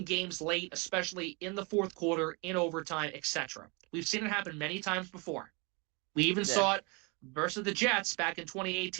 games late, especially in the fourth quarter, in overtime, etc. We've seen it happen many times before. We even saw it versus the Jets back in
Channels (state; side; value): quieter; left; 30.6 dB